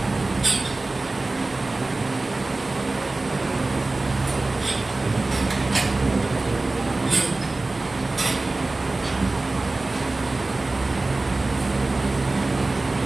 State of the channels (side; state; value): left; quieter; 3.1 dB